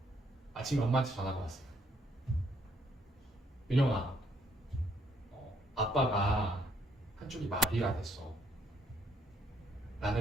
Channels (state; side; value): normal; both; correlation 0.70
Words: 아침에 엄마한테 전화가 왔어요. 윤영아, 아빠가 한쪽이 마비가 됐어